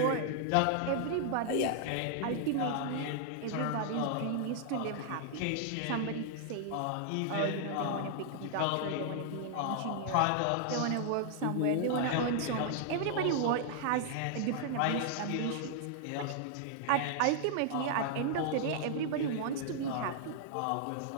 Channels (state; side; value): different; both; correlation -0.01